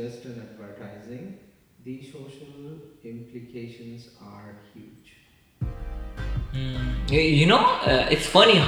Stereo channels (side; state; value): both; identical; correlation 1.00